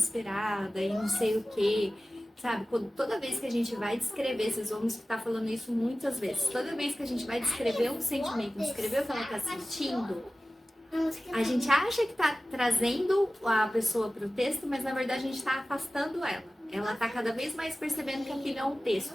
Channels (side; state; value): both; normal; correlation 0.96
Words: e não sei o que, sabe? Toda vez que a gente vai descrever, vocês vão estar falando isso muitas vezes, toda vez que a gente vai descrever um sentimento, descrever o que ela está sentindo, a gente acha que está trazendo a pessoa para o texto, mas na verdade a gente está afastando ela. Ela está cada vez mais percebendo que aquilo é um texto,